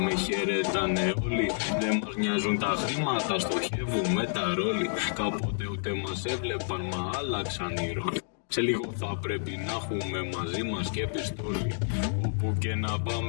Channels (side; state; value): right; silent; digital silence